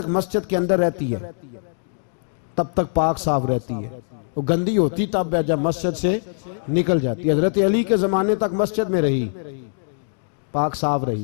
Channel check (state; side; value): silent; right; digital silence